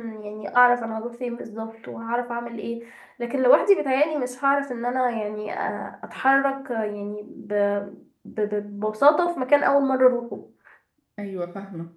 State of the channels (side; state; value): both; identical; correlation 1.00